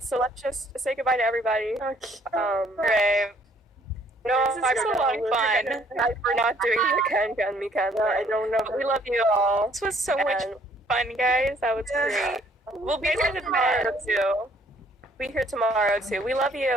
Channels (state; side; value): normal; both; correlation 0.62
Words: so let's just say goodbye to everybody. Okay. Right. No, this is a lot of fun. We're not doing the can me can. I don't know. We love you all. This was so much fun, guys. That was great. We'll be here tomorrow too. Be here tomorrow too. We love